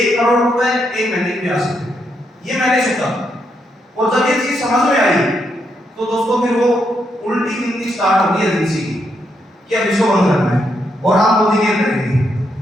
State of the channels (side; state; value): both; normal; correlation 0.79